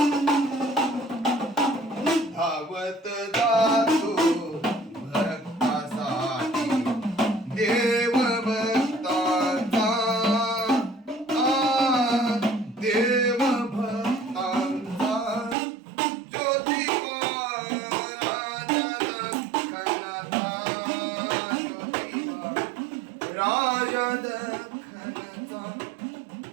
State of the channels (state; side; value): drops out; left; at 15.6 s